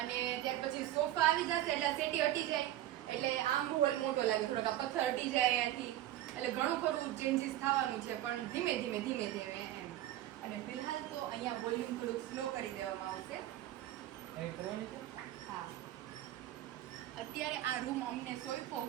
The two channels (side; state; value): left; quieter; 13.7 dB